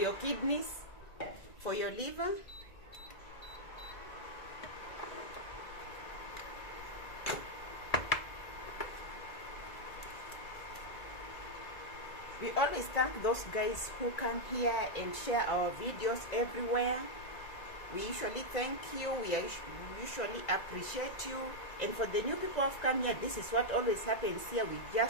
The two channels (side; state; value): right; late; 1.9 ms